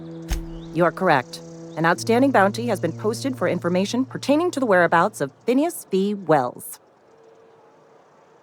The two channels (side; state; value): both; identical; correlation 1.00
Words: You are correct. An outstanding bounty has been posted for information pertaining to the whereabouts of Phineas V. Wells.